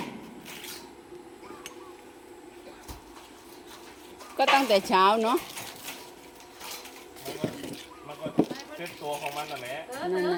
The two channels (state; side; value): identical; both; correlation 1.00